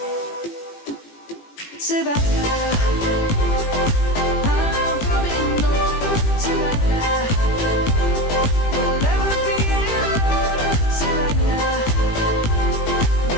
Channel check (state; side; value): late; right; 18 ms